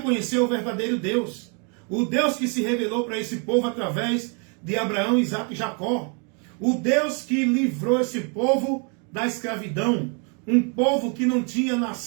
conhecer o verdadeiro Deus. O Deus que se revelou para esse povo através de Abraão, Isaac e Jacó. O Deus que livrou esse povo da escravidão. Um povo que não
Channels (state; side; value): quieter; left; 37.0 dB